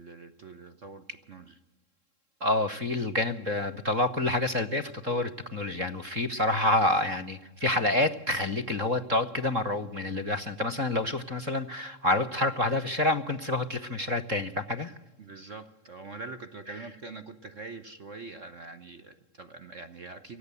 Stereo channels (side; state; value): left; late; 3.7 ms